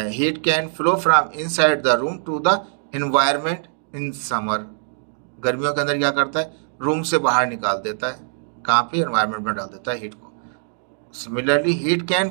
heat can flow from inside the room to the environment in summer. गर्मियों के अंदर क्या करता है, रूम से बाहर निकाल देता है, कहाँ पे, एनवायरनमेंट में डाल देता है हीट को। Similarly heat can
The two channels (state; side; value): silent; left; digital silence